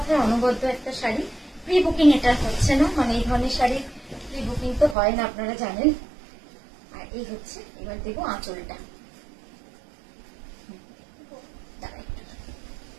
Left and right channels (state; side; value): drops out; left; at 5.0 s